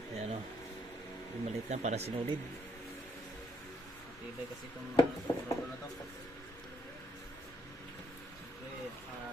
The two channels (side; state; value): both; normal; correlation 0.72